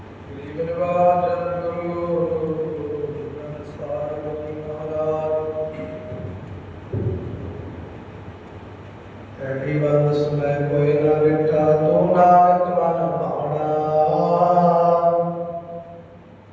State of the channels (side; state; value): both; identical; correlation 1.00